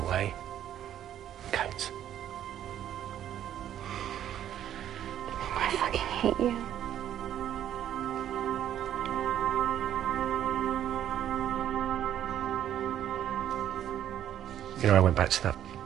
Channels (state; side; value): quieter; left; 10.8 dB